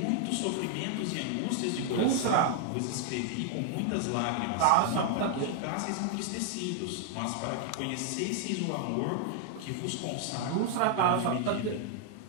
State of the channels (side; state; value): both; different; correlation 0.00